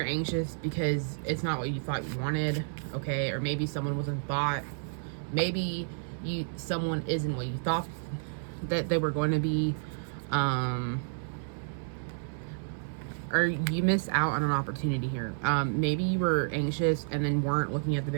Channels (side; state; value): left; silent; 57 dB below the other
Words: anxious because it's not what you thought you wanted, okay? Or maybe someone wasn't bought. Maybe someone isn't what you thought that they were going to be. Or you missed out on an opportunity here. Maybe you were anxious and then weren't looking at the